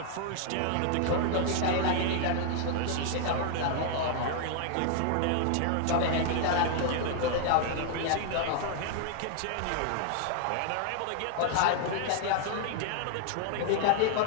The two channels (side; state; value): both; different; correlation 0.00